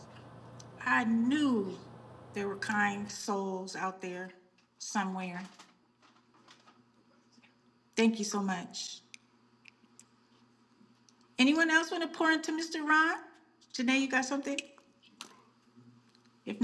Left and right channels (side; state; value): both; identical; correlation 1.00